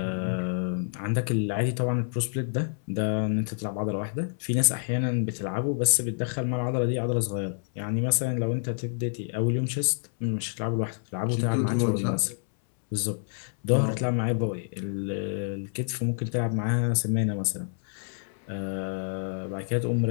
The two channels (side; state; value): right; silent; 59 dB below the other